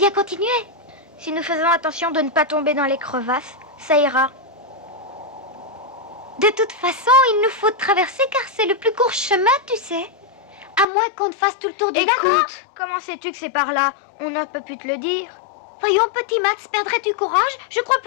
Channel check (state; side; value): drops out; right; at 10.9 s